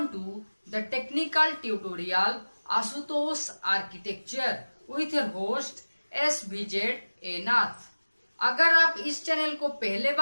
to the technical tutorial Ashutosh architecture with your host SVZ Nath. अगर आप इस चैनल को पहले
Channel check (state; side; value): inverted; both; correlation -1.00